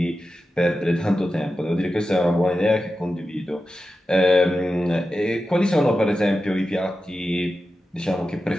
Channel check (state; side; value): normal; both; correlation 0.92